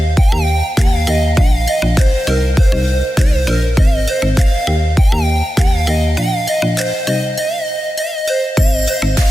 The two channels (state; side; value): normal; both; correlation 0.92